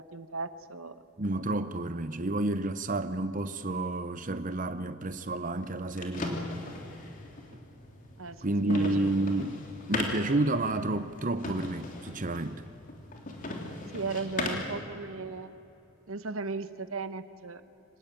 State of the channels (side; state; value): both; normal; correlation 0.46